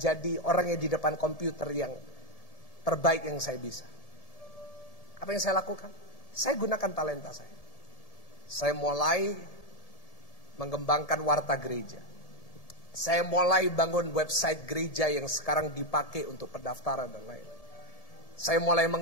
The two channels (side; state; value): right; late; 1.7 ms